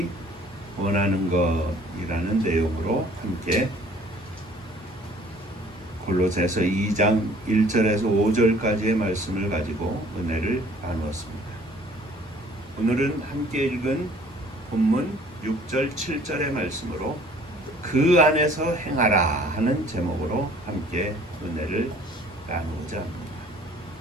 원하는 것이라는 내용으로 함께 골로새서 2장 1절에서 5절까지의 말씀을 가지고 은혜를 나누었습니다. 오늘은 함께 읽은 본문 6절 7절의 말씀으로 그 안에서 행하라 하는 제목으로 함께 은혜를 나누고자 합니다.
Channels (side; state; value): both; normal; correlation 0.54